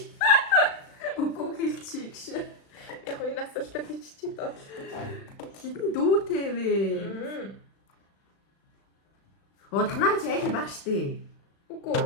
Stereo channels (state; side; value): late; right; 36 ms